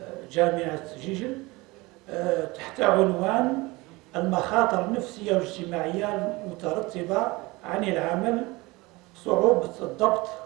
جامعة جيجل، تحت عنوان المخاطر النفسية والاجتماعية المترتبة عن العمل، صعوبة الضبط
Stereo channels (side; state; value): left; quieter; 22.7 dB